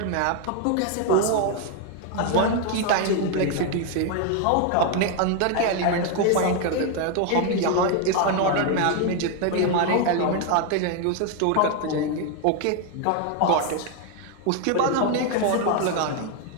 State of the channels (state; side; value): different; both; correlation 0.01